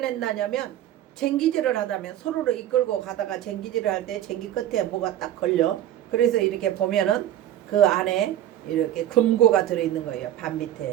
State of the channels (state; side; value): quieter; left; 12.0 dB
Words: 쟁기질을 하다면 서로를 이끌고 가다가 쟁기질을 할 때 쟁기 끝에 뭐가 딱 걸려. 그래서 이렇게 보면은 그 안에 이렇게 금고가 들어있는 거예요. 밭